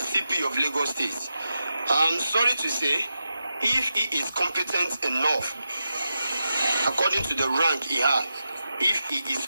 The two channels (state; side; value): inverted; both; correlation -0.89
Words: CP of Lagos State. I'm sorry to say, if he is competent enough, according to the rank he has, if he is